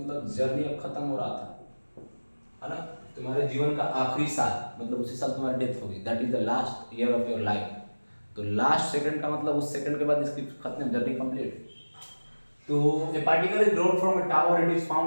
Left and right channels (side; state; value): both; inverted; correlation -1.00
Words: journey अब खत्म हो रहा था, है ना, तुम्हारे जीवन का आखिरी साल, मतलब उसी साल तुम्हारी डेथ होगी, that is the last year of your life. तो लास्ट सेकंड का मतलब उस सेकंड के बाद इसकी खत्म, जर्नी कंप्लीट। तो a particle is dropped from a tower, it is